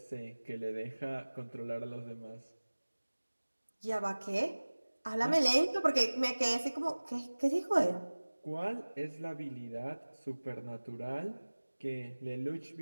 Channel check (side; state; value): both; inverted; correlation -1.00